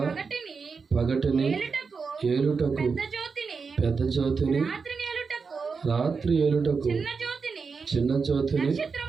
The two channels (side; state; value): left; quieter; 5.1 dB